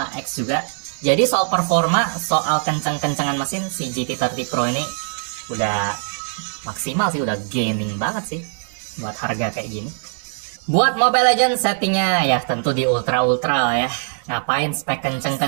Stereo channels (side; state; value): left; silent; digital silence